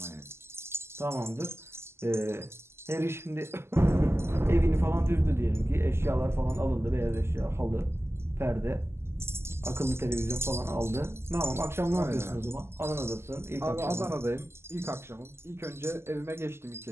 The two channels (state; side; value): late; left; 0.12 ms